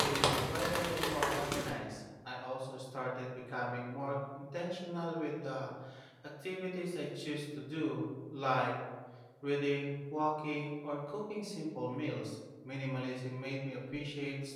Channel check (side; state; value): both; identical; correlation 1.00